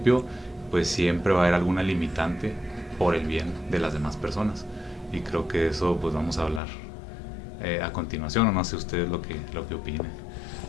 pues siempre va a haber alguna limitante por el bien de las demás personas. Y creo que eso pues vamos a hablar a continuación, o no sé ustedes lo que opinen.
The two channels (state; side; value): drops out; right; at 6.6 s